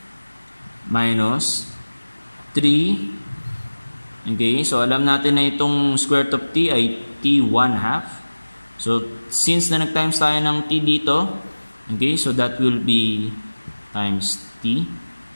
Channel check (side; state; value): both; inverted; correlation -1.00